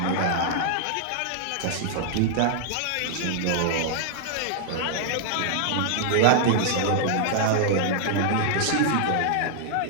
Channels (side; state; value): both; different; correlation -0.01